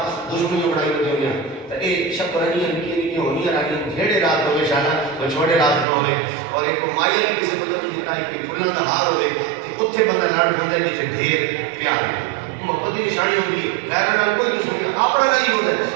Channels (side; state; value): left; drops out; at 5.9 s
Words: دشمنی بڑائی ہوتی ہوئی تو یہ شکرانی نکی ہونی رانی جھیڑے رات ہوئے شانہ وہ چھوڑے رات نہ ہوئے اور ایک مائیا بھی کسی کو نہیں دیتا ہے کہ پھولوں کا ہار ہوئے کہ اتھے بندہ لڑ ہوتا ہے جیسے ڈھیر پیار ہوئے محبت کی نشانی ہوگی غیرہ نال کوئی دشمنی اپنا نہیں ہوتا ہے